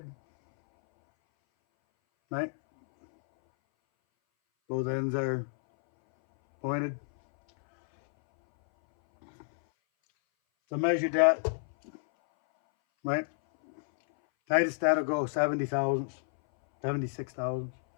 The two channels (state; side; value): silent; right; 58 dB below the other